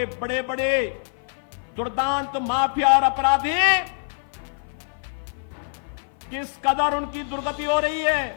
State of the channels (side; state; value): right; silent; 56 dB below the other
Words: बड़े बड़े दुर्दांत माफिया और अपराधी किस कदर उनकी दुर्गति हो रही